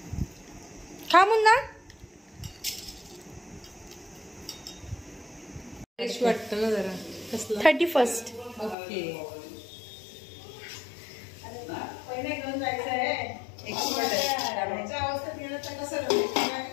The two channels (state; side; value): drops out; right; at 8.8 s